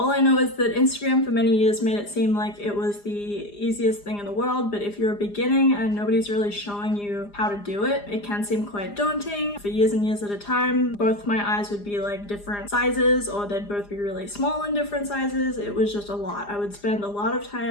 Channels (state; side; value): late; right; 4.9 ms